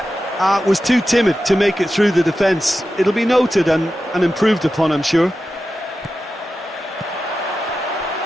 Was too timid to make it through the defence. It'll be noted and improved upon, I'm sure.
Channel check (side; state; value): both; normal; correlation 0.92